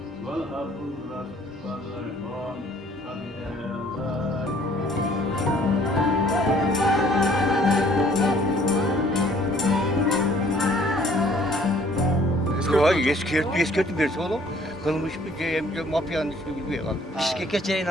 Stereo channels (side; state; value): both; normal; correlation 0.58